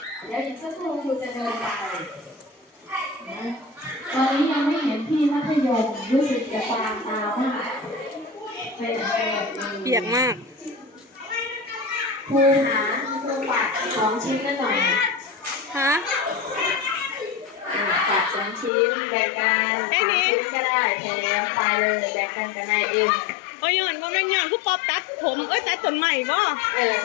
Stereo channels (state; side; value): drops out; right; at 18.7 s